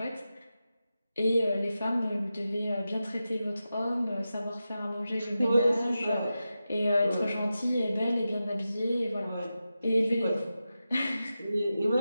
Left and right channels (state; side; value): inverted; both; correlation -0.92